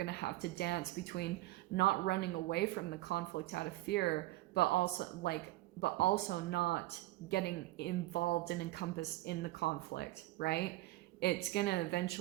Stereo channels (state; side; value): quieter; left; 17.7 dB